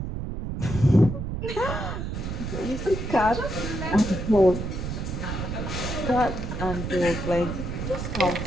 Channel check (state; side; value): noise; right; rumble, 5 dB below the sound